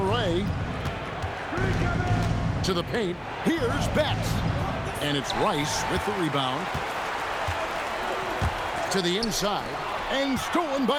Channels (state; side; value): identical; both; correlation 1.00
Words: To the paint. Here's Betts. And it's Rice with the rebound. To the inside. And stolen